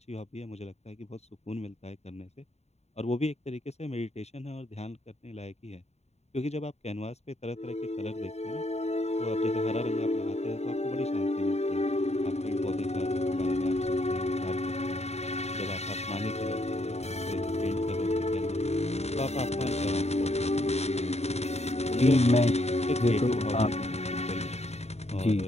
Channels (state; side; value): late; right; 0.31 ms